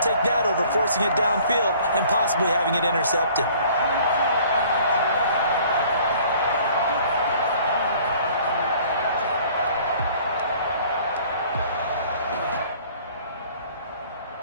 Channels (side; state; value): both; inverted; correlation -0.54